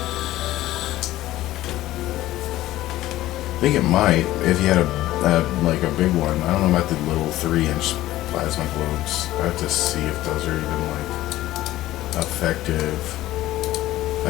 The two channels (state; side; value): quieter; right; 15.5 dB